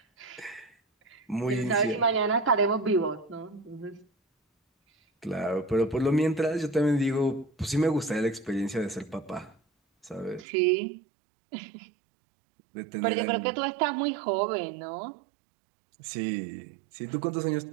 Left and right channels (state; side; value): drops out; left; at 10.5 s